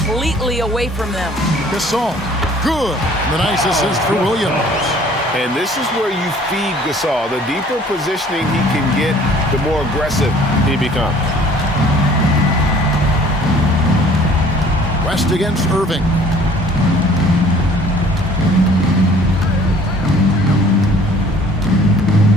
away from them. Gasol, good. The nice assist for Williams. And this is where you feed Gasol. The deeper positioning he can get, the more aggressive he becomes. West against Irving.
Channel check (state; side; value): normal; both; correlation 0.53